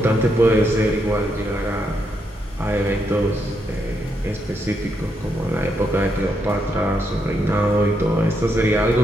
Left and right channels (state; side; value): normal; both; correlation 0.79